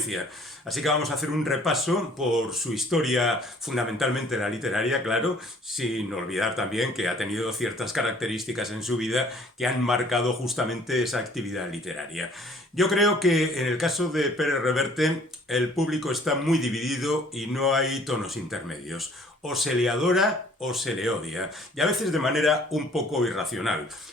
Así que vamos a hacer un repaso por su historia, fundamentalmente la literaria, claro, sin olvidar también que ha tenido ciertas características en su vida que han marcado justamente esa actividad literaria. Yo creo que en el caso de Pérez Reverte el público está muy dividido y no hay tonos intermedios. O se le adora o se le odia, y a veces de manera un poco irracional.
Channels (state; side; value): normal; both; correlation 0.56